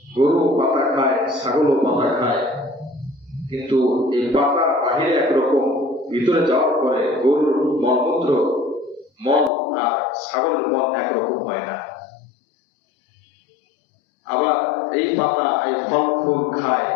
গরু পাতা খায়, ছাগলও পাতা খায়, কিন্তু এই পাতা বাহিরে একরকম, ভিতরে যাওয়ার পরে গরুর মলমূত্র, মল আর ছাগলের মল একরকম হয় না। আবার এই পাতা, এই ফল ফুল খায়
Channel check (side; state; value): right; drops out; at 9.5 s